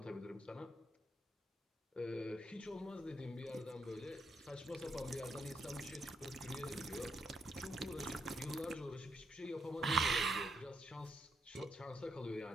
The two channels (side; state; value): both; normal; correlation 0.78